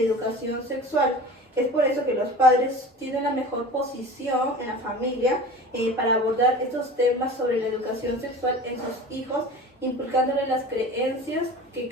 educación sexual. Es por eso que los padres tienen la mejor posición en la familia para abordar estos temas sobre la educación sexual en sus hijos, inculcándoles las creencias que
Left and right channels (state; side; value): normal; both; correlation 0.37